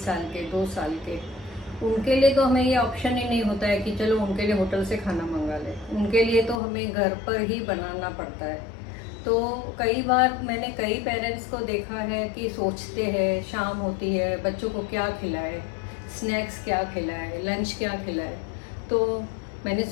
साल के, 2 साल के, उनके लिए तो हमें ये ऑप्शन ही नहीं होता है कि चलो उनके लिए होटल से खाना मंगा लें। उनके लिए तो हमें घर पर ही बनाना पड़ता है। तो कई बार मैंने कई पेरेंट्स को देखा है कि सोचते हैं, शाम होती है, बच्चों को क्या खिलाए, स्नैक्स क्या खिलाए, लंच क्या खिलाए। तो मैंने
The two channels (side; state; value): right; drops out; at 6.6 s